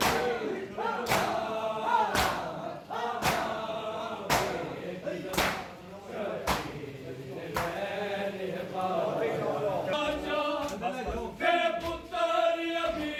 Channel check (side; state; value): both; identical; correlation 1.00